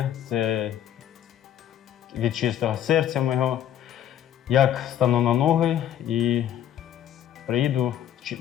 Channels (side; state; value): right; quieter; 10.8 dB